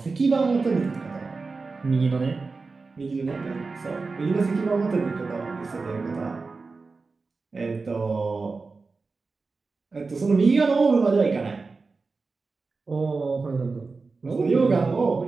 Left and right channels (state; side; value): quieter; left; 4.1 dB